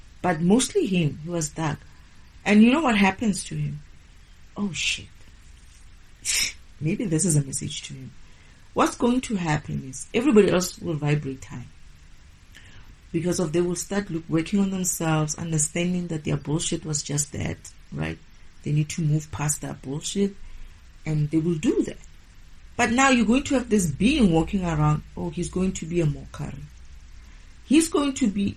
but mostly him. He was dark. And you know what happens to him? Oh shit. Maybe this is a message to him. What's going to happen is, everybody else will vibrate high. Because they will start working on themselves, understanding that their bullshit was just that, right? They need to move past that bullshit, and they will do that. But now you're going to have this being walking around. Oh, he's going to be a mockery. He's going to be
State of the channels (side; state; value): both; identical; correlation 1.00